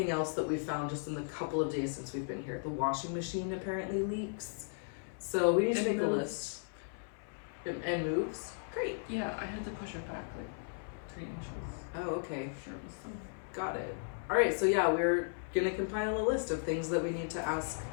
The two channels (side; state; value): right; silent; 54 dB below the other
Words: else that we found just in the couple of days since we've been here. The washing machine apparently leaks. So we need to make a list. And moves? Great. Yeah, I had to push it back like 3 inches. Oh, okay. I'm sure it was some. Got it. All right, so yeah, we're gonna compile a list of things that we need to ask